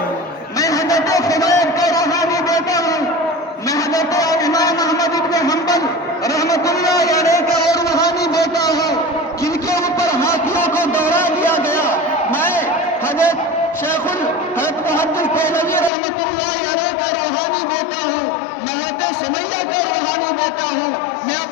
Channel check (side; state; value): right; drops out; at 15.9 s